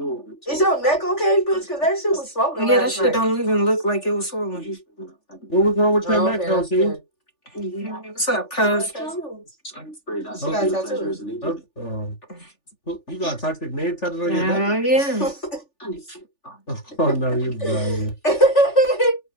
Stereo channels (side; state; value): right; late; 3.4 ms